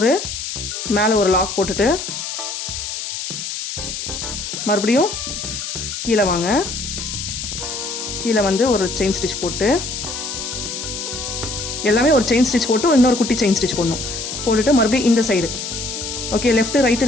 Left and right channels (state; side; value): noise; left; hiss, 6 dB below the sound